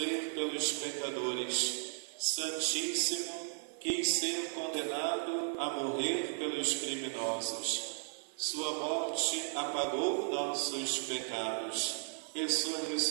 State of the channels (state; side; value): silent; left; 54 dB below the other